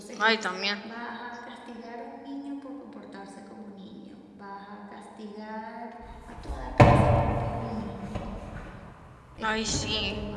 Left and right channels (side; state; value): both; identical; correlation 1.00